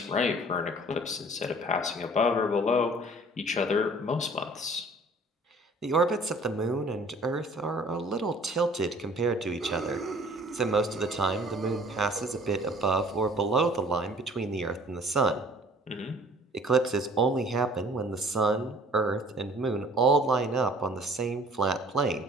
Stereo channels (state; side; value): normal; both; correlation 0.52